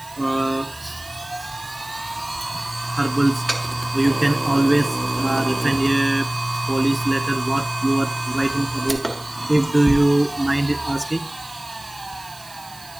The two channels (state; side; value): noise; right; hiss, 21 dB below the sound